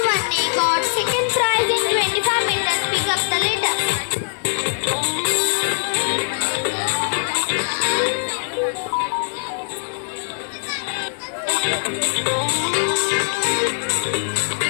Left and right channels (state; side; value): silent; right; digital silence